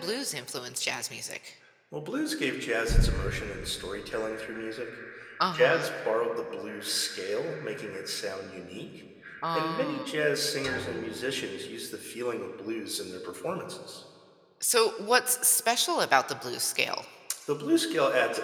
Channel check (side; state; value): both; identical; correlation 1.00